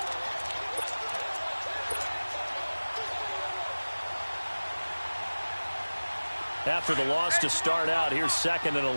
After the loss to start out, here's 2nd and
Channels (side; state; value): both; inverted; correlation -1.00